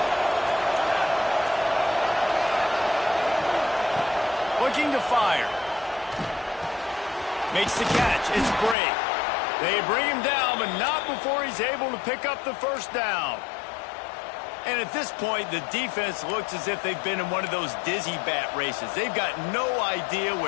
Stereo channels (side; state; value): right; drops out; at 8.8 s